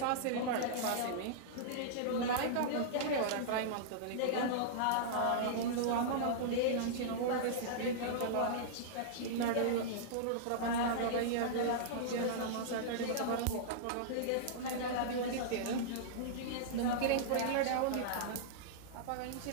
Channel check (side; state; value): both; different; correlation -0.02